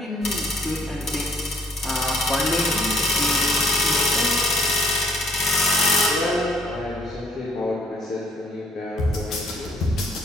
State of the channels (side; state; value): both; normal; correlation 0.62